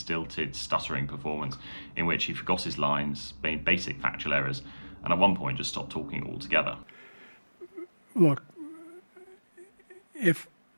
stuttering performance in which he forgot his lines, made basic factual errors, and at one point just stopped talking altogether. Look, if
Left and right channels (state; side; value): inverted; both; correlation -1.00